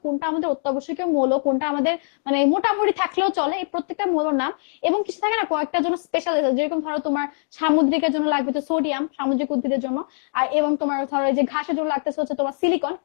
কোনটা আমাদের অত্যাবশ্যকীয় মৌল, কোনটা আমাদের মানে মোটামুটি থাকলেও চলে, এই প্রত্যেকটা মৌলের নাম, এবং কিছু থাকে না কয়েকটার জন্য স্পেশাল, যেরকম ধরো তোমার সামুদ্রিকের জন্য লাগবে তো সোডিয়াম, সামুদ্রিক উদ্ভিদের জন্য, আর এবং তোমার ধরো যে ঘাসের জন্য লাগতেছে হচ্ছে তোমার সিলিকন,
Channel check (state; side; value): silent; right; digital silence